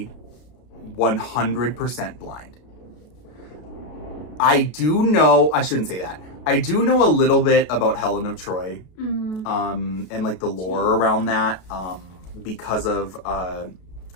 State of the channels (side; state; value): right; late; 33 ms